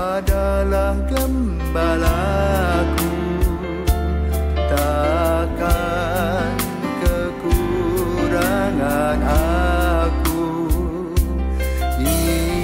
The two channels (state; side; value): identical; both; correlation 1.00